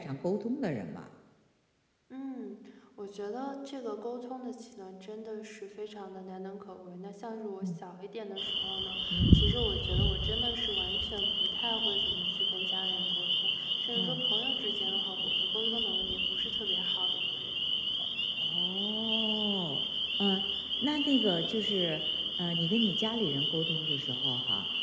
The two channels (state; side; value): identical; both; correlation 1.00